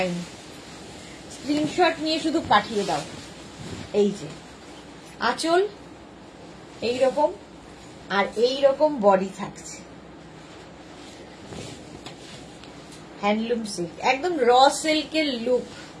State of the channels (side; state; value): both; identical; correlation 1.00